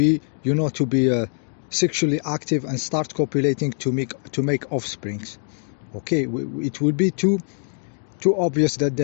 sexually active and start copulating to make offsprings, okay. It will be too obvious that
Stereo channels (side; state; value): right; silent; 63 dB below the other